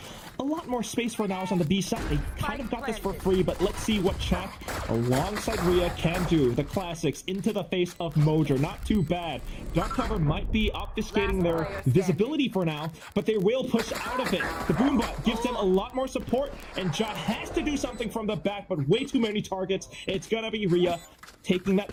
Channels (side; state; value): both; identical; correlation 1.00